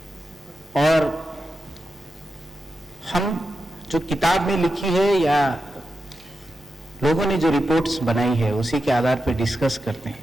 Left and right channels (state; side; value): normal; both; correlation 0.89